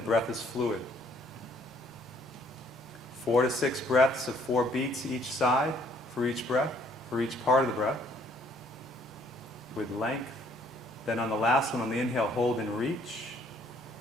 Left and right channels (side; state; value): both; normal; correlation 0.63